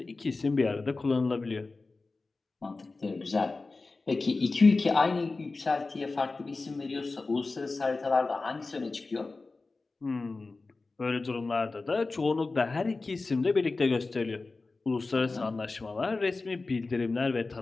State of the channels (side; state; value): right; quieter; 3.7 dB